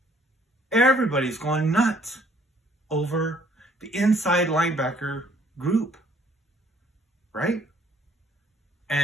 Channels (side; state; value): both; normal; correlation 0.62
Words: Everybody's going nuts over the inside linebacker group, right?